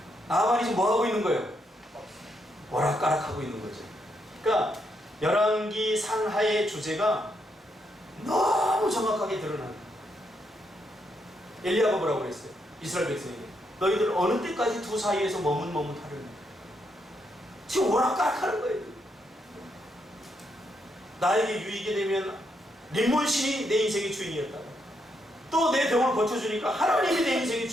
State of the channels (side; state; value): both; normal; correlation 0.78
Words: 나만이 지금 뭐 하고 있는 거예요? 오락가락하고 있는 거죠. 그러니까 열왕기 상하의 주제가 너무 정확하게 드러나요. 엘리야가 뭐라고 그랬어요? 이스라엘 백성에게 너희들 어느 때까지 두 사이에서 머뭇머뭇하려냐. 지금 오락가락하는 거예요. 나에게 유익이 되면 림몬신이 내 인생의 주인이었다가 또 내 병을 고쳐주니까 하나님이 내 인생의